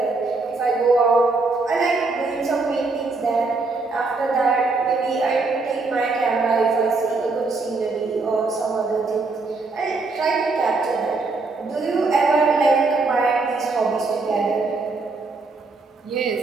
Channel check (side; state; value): left; quieter; 3.8 dB